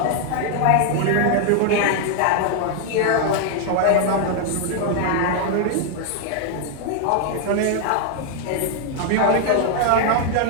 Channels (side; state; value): both; different; correlation 0.00